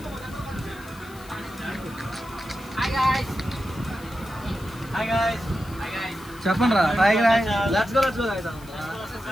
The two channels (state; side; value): noise; left; hiss, 22 dB below the sound